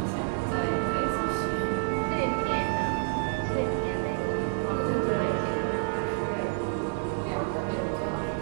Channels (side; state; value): left; silent; 59 dB below the other